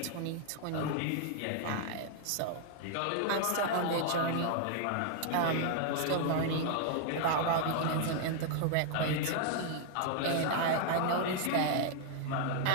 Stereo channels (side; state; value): both; different; correlation 0.00